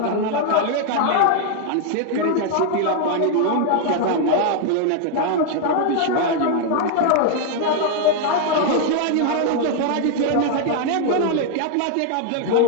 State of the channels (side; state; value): both; different; correlation 0.00